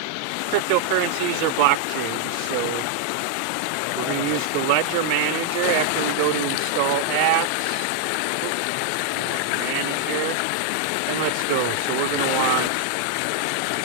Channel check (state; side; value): different; both; correlation 0.00